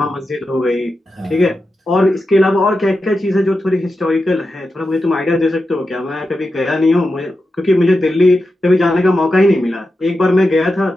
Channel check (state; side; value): normal; both; correlation 0.90